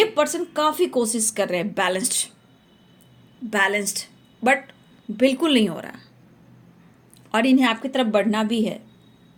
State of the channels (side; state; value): both; identical; correlation 1.00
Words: पर्सन काफ़ी कोशिश कर रहे हैं बैलेंस्ड, बट बिल्कुल नहीं हो रहा और इन्हें आपकी तरफ बढ़ना भी है।